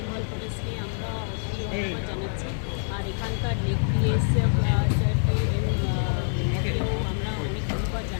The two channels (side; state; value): right; silent; digital silence